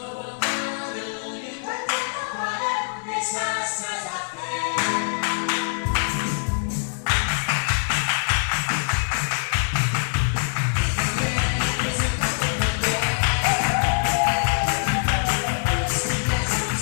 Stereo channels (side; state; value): right; silent; digital silence